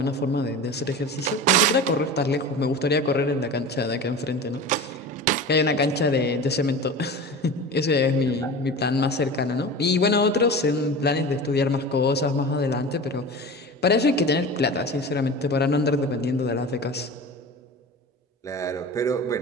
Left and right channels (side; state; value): both; normal; correlation 0.33